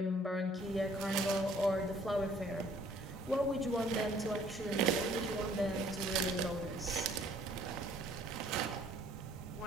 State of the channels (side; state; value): both; normal; correlation 0.60